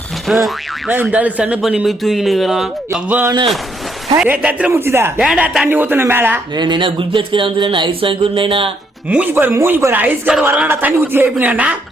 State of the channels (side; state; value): both; normal; correlation 0.73